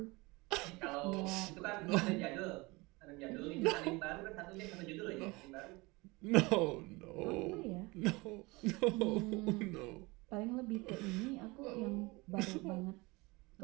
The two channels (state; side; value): quieter; left; 24.2 dB